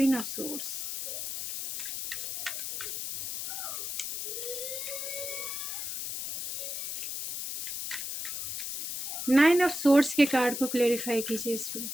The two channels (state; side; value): noise; left; hiss, 5 dB below the sound